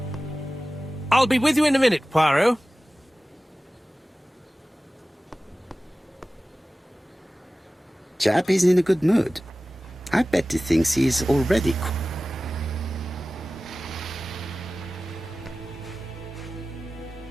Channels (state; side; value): normal; both; correlation 0.96